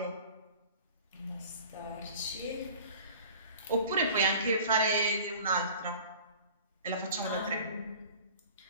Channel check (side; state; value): both; inverted; correlation -0.43